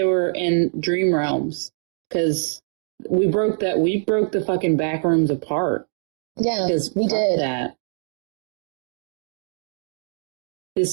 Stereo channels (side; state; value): left; silent; digital silence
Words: were in dream realms because we broke the fucking back rooms apart. Yeah, we fuck did. That.